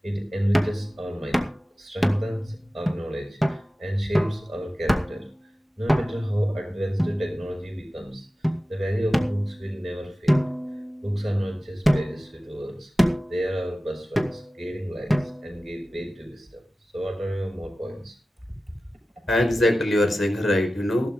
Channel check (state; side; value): normal; both; correlation 0.95